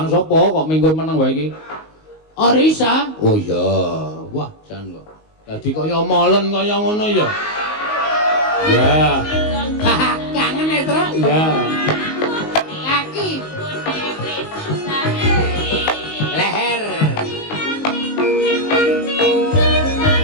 sapa kok minggu meneng wae iki? Orisa. Oh iya. Wah, jan kok. Dadi kaya molen kaya ngono ya. Ya. Kangen ya, Tru? Ya. Kaki. Leher.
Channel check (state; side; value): late; right; 19 ms